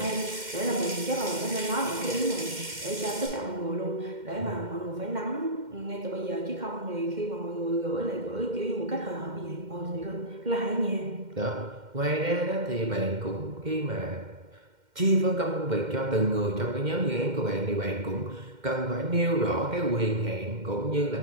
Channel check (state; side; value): late; left; 2.1 ms